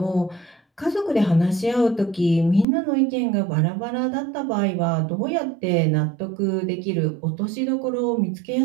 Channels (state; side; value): drops out; left; at 2.7 s